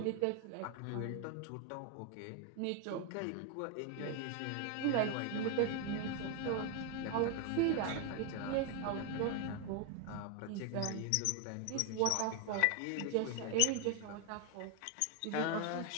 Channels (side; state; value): both; different; correlation 0.01